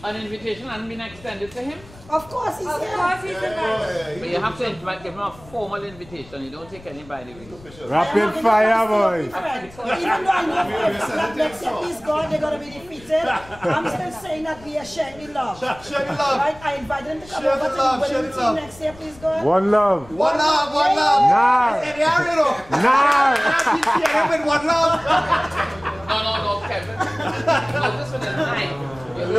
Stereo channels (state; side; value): noise; left; rumble, 22 dB below the sound